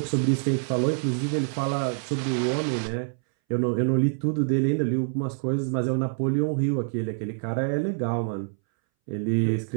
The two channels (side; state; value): left; silent; 61 dB below the other